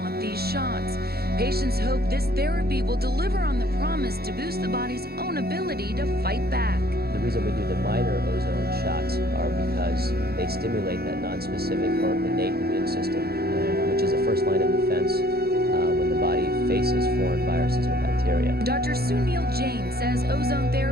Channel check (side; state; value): left; late; 0.46 ms